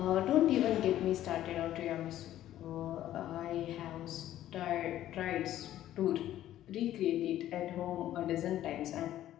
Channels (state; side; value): quieter; right; 12.9 dB